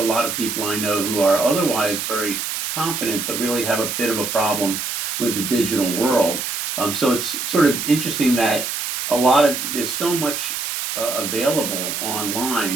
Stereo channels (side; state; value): right; noise; hiss, 3 dB below the sound